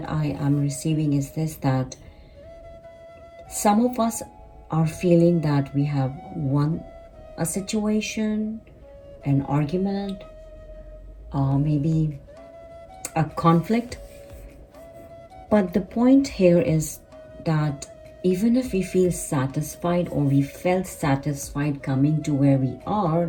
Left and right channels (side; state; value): both; identical; correlation 1.00